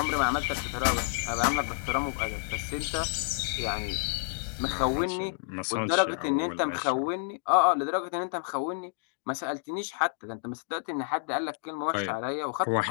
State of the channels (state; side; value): silent; right; digital silence